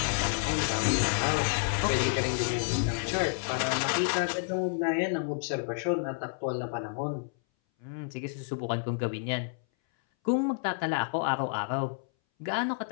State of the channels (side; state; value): right; silent; 58 dB below the other